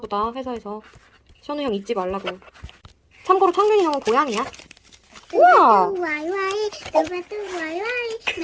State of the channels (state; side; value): identical; both; correlation 1.00